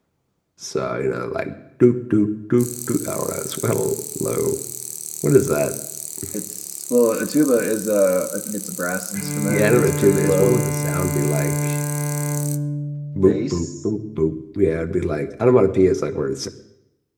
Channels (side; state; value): both; identical; correlation 1.00